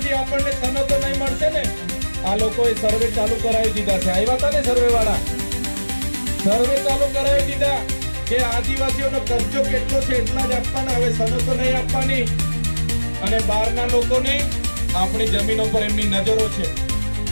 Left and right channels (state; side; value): inverted; both; correlation -1.00